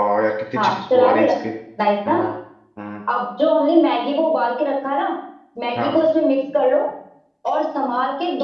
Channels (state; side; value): identical; both; correlation 1.00